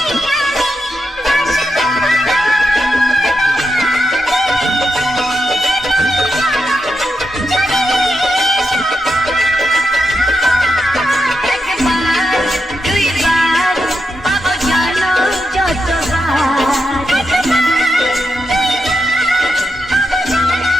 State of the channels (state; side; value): normal; both; correlation 0.86